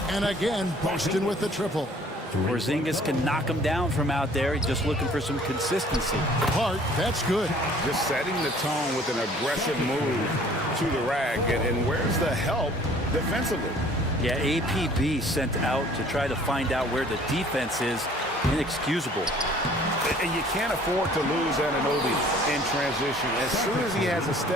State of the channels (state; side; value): normal; both; correlation 0.54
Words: and again, Boston with the triple. Porzingis can knock him down from out there. He's just looking for some consistency. Hart, that's good. Just setting the tone with an aggressive move to the rack. And where's the help defensively? Yeah, APB sent out to try to find out where the defense is. Inexcusable. And you can't afford to lose Anunoby in transition. As soon as he has a